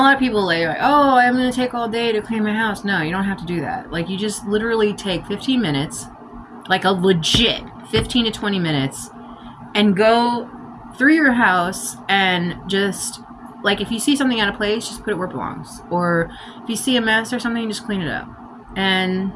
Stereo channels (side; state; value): both; identical; correlation 1.00